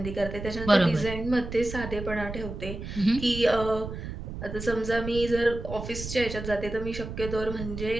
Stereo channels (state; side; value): noise; right; rumble, 8 dB below the sound